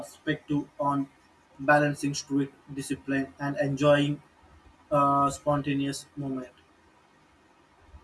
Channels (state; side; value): identical; both; correlation 1.00